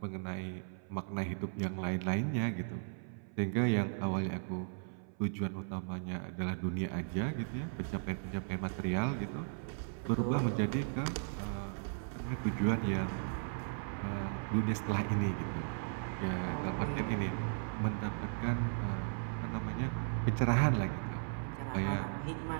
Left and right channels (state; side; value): silent; left; 53 dB below the other